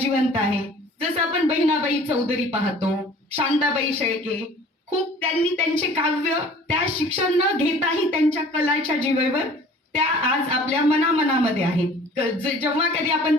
आहे. जसं आपण बहिणाबाई चौधरी पाहतो, शांताबाई शेळके, खूप त्यांनी त्यांचे काव्य त्या शिक्षण न घेताही त्यांच्या कलाच्या जीवेवर त्या आज आपल्या मनामध्ये आहेत. जेव्हा कधी आपण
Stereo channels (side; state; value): both; normal; correlation 0.49